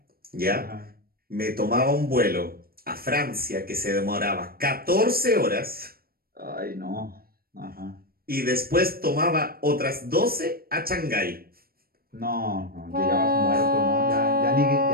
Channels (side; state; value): left; late; 0.44 ms